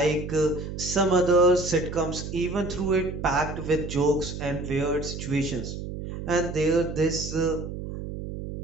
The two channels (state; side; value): noise; right; hum, 7 dB below the sound